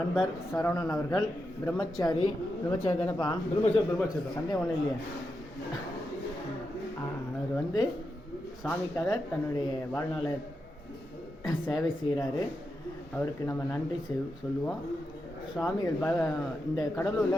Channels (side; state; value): both; normal; correlation 0.87